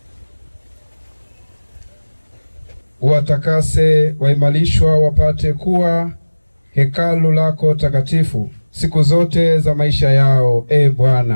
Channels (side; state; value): both; inverted; correlation -1.00